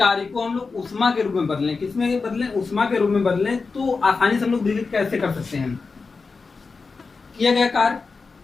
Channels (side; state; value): right; quieter; 4.4 dB